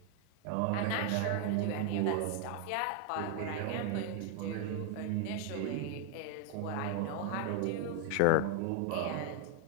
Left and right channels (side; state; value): both; different; correlation 0.00